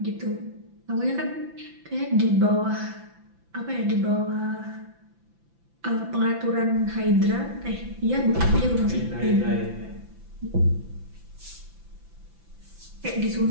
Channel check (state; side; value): late; left; 5.9 ms